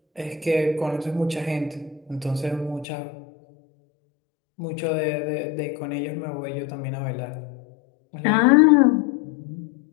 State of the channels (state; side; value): drops out; right; at 2.9 s